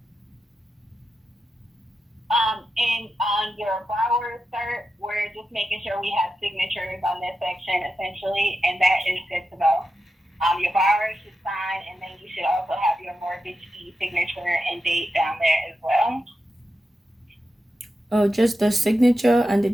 And on your borrower cert, we're just making sure we have signatures on this section essentially, and that is good to go. Your borrower should sign, and then you should also have your mortgagee signature and date down there as well. Oh, just the signature and the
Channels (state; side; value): normal; both; correlation 0.89